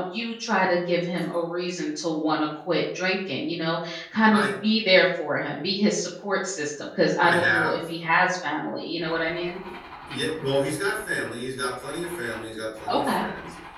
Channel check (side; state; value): both; identical; correlation 1.00